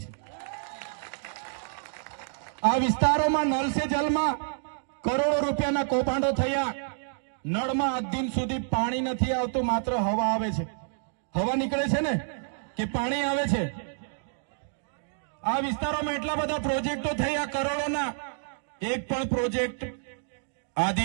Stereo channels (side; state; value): left; silent; digital silence